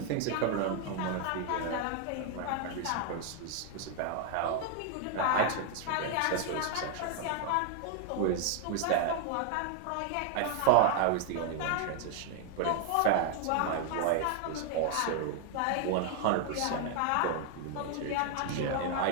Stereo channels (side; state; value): both; different; correlation 0.00